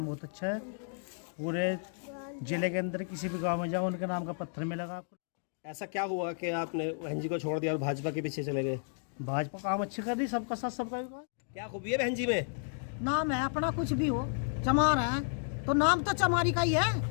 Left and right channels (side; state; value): right; silent; digital silence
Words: बहुत अच्छा है। पूरे जिले के अंदर किसी भी गांव में जाओ उनके नाम का पत्थर मिलेगा आपको। ऐसा क्या हुआ कि आपने बहन जी को छोड़ दिया और भाजपा के पीछे चले गए? भाजपा काम अच्छी कर रही, सबका साथ सबका विकास। क्या खूबी है बहन जी में? नाम है अपना, कुछ भी हो चमार है तो नाम तो चमारी का ही